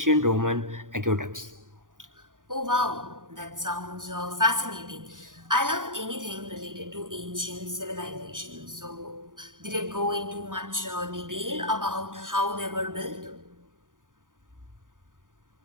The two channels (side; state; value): left; late; 0.89 ms